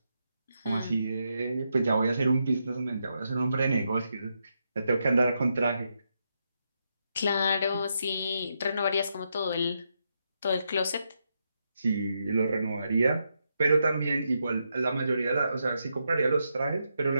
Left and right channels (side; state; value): both; inverted; correlation -0.82